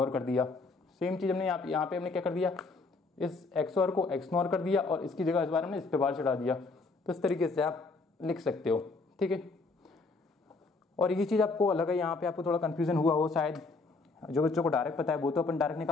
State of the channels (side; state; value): right; quieter; 3.8 dB